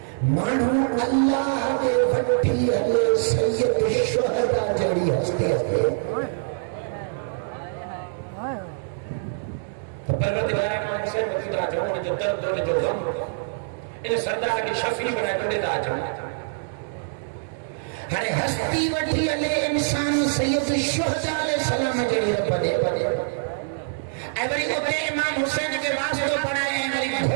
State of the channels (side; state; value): left; silent; digital silence